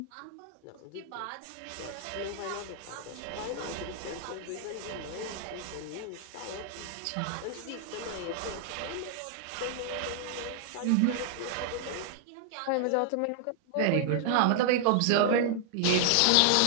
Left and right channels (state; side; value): different; both; correlation 0.00